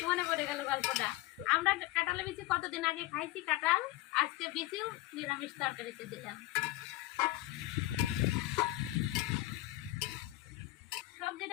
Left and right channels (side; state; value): right; quieter; 17.3 dB